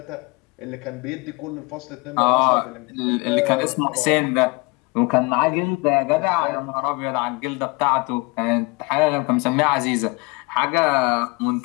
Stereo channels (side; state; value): right; quieter; 27.9 dB